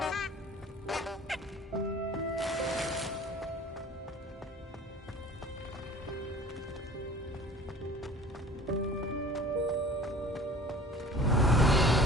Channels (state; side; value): normal; both; correlation 0.45